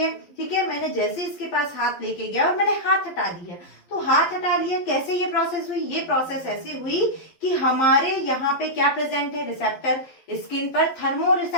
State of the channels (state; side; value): late; right; 11 ms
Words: ठीक है, मैंने जैसे इसके पास हाथ लेके गया और मैंने हाथ हटा दिया, तो हाथ हटा लिया। कैसे ये प्रोसेस हुई? ये प्रोसेस ऐसी हुई कि हमारे यहाँ पे क्या प्रेजेंट है? रिसेप्टर, स्किन पर थर्मो